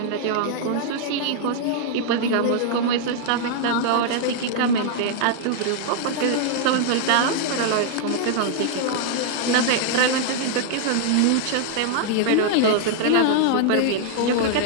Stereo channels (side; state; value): both; different; correlation -0.01